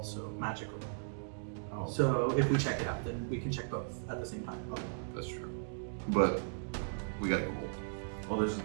magical. Oh. So if we check it out, then we can check both at the same time. That's true. But we got gold. Well,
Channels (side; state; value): left; silent; digital silence